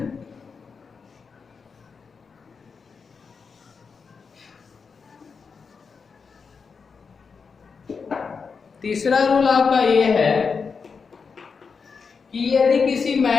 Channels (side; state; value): right; quieter; 5.4 dB